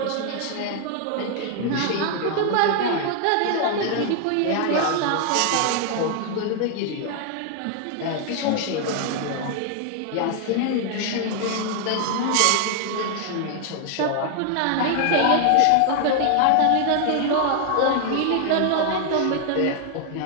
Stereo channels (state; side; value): different; both; correlation 0.00